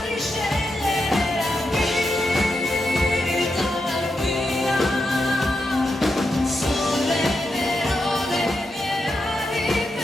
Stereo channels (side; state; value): both; normal; correlation 0.86